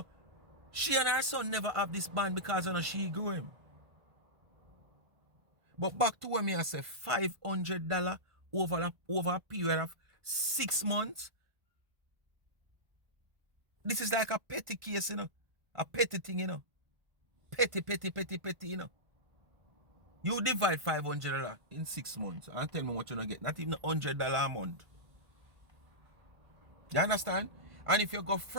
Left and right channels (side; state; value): left; late; 1.5 ms